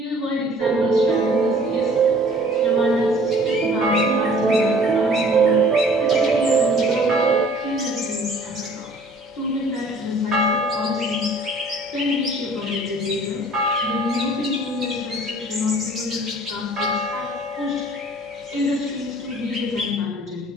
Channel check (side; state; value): both; normal; correlation 0.52